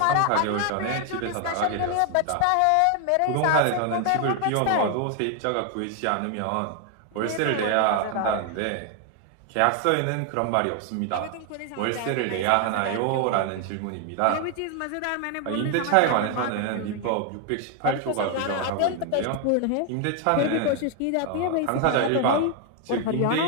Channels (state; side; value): different; both; correlation 0.00